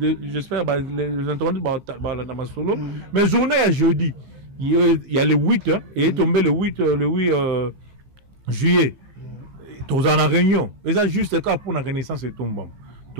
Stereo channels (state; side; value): late; left; 15 ms